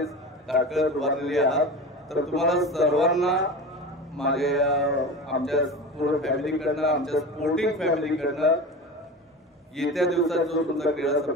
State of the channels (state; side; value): normal; both; correlation 0.30